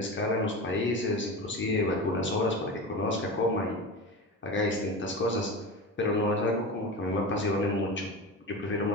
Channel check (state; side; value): normal; both; correlation 0.27